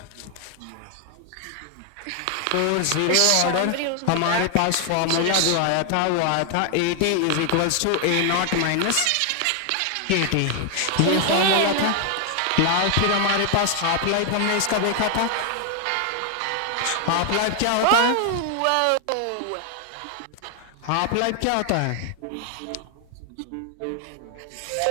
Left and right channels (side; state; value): both; different; correlation 0.00